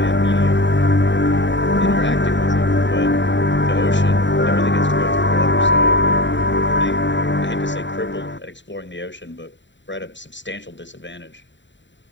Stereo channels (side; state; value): right; late; 0.53 ms